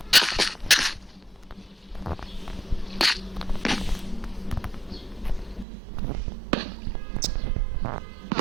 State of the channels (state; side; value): drops out; left; at 5.7 s